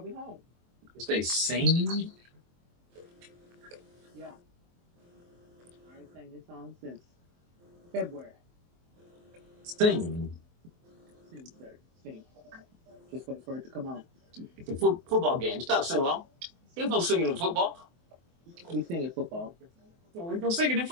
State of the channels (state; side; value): late; left; 23 ms